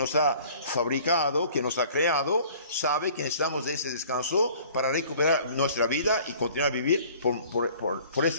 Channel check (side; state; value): both; inverted; correlation -0.51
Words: ha fabricado, que nos ha creado, sabe que necesitamos de ese descanso para recuperar nuestra vida y continuar a vivir por